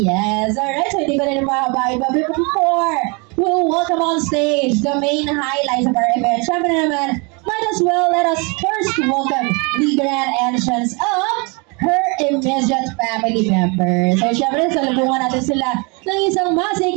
alright. So hindi ko rin mahabain pa before we'll welcome on stage the main highlights of our event. Siyempre naman, might as well let us first welcome the grand entrance of her immediate family members. So syempre, salubungan natin sila ng isang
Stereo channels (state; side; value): quieter; left; 30.8 dB